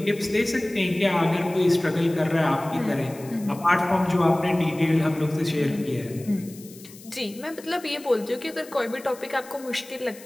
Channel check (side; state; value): left; noise; hiss, 20 dB below the sound